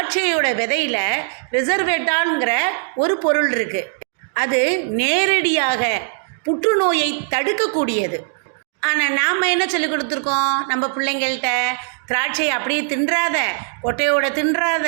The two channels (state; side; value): silent; left; 63 dB below the other